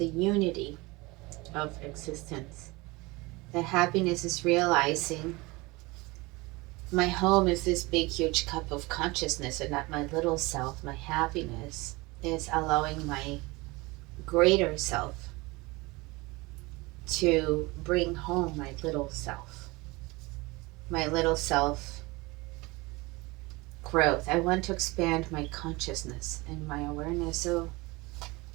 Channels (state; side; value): quieter; left; 23.5 dB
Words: unity of existence. The happiness is realizing my home is this big, huge cup of consciousness and not my little self, my happiness. is allowing my greater self to bring home my little self growth. I want to expand my consciousness and my awareness. So,